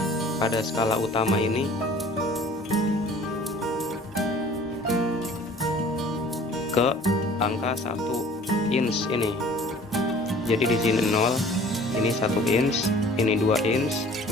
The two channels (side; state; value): both; normal; correlation 0.49